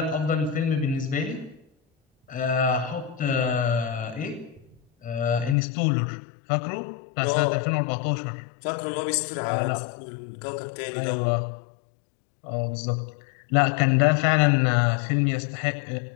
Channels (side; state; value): right; drops out; at 5.6 s